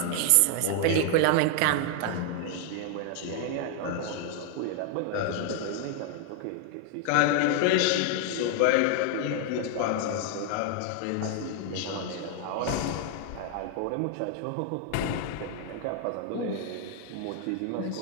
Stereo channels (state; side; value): different; both; correlation 0.00